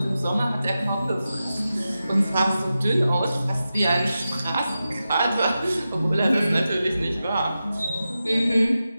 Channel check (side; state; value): both; inverted; correlation -0.92